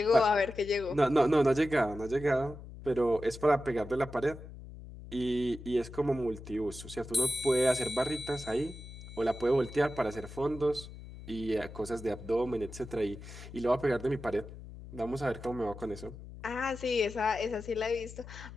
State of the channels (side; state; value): left; noise; hum, 14 dB below the sound